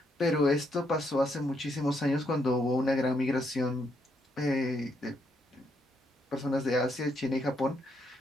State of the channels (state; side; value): normal; both; correlation 0.76